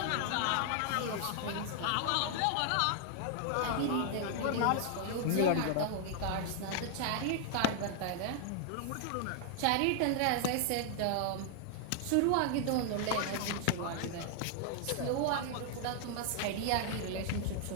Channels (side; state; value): both; different; correlation 0.00